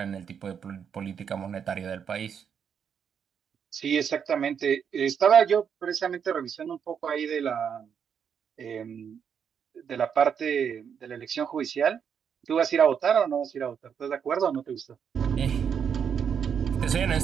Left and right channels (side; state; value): left; quieter; 7.5 dB